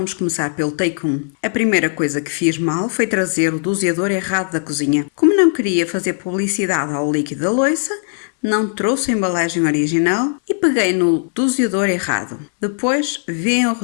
começar pelo take 1. A primeira coisa que fiz mal foi trazer o doseador errado da cozinha. Como não queria fazer publicidade ao líquido da louça, não trouxe a embalagem original e peguei no doseador errado. Depois veem o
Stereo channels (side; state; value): right; silent; 67 dB below the other